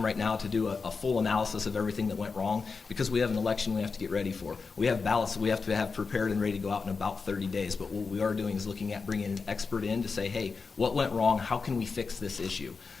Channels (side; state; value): right; quieter; 4.8 dB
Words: right now to do a full analysis of everything that went wrong, because we have an election we have to get ready for. We have ballots that we have to have prepared and ready to go out in about 30 days. But what we are doing is looking at bringing an expert in to say, hey, what went wrong? How can we fix this issue?